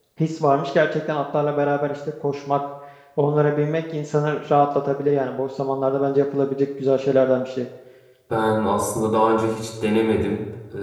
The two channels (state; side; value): identical; both; correlation 1.00